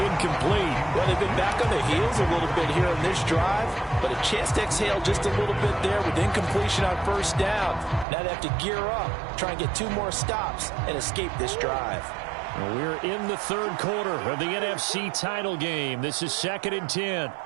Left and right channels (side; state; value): left; drops out; at 8.1 s